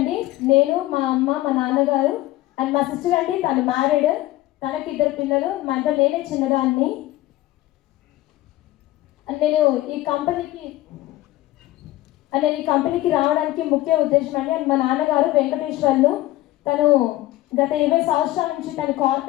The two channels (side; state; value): right; quieter; 16.6 dB